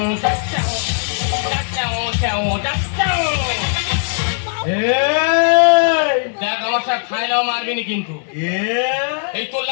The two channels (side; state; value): right; silent; digital silence